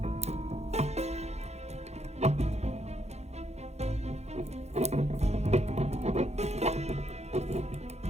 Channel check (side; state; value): left; late; 0.32 ms